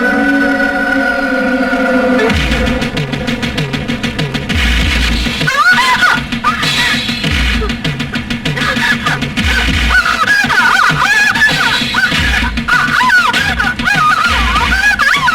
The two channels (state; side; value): identical; both; correlation 1.00